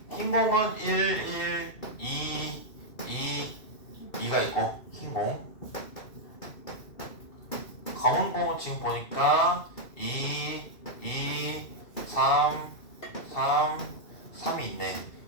흰 공은 1, 1, 2, 2가 있고, 흰 공. 검은 공은 지금 보니까 3이 있네.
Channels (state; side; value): late; right; 2.5 ms